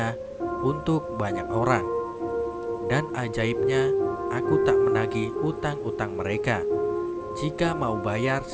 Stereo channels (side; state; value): both; identical; correlation 1.00